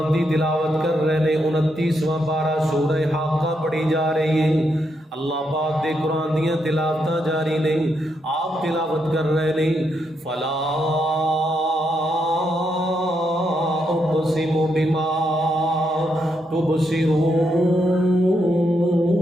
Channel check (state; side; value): normal; both; correlation 0.80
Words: دی تلاوت کر رہے نے. 29واں پارہ سورہ حاقہ پڑھی جا رہی ہے. اللہ پاک دے قرآن دیاں تلاوتاں جاری نہیں، آپ تلاوت کر رہے نہیں. فلا اقسم بما تبصرون